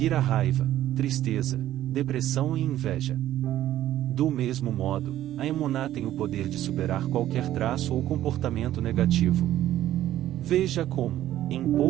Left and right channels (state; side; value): quieter; left; 13.1 dB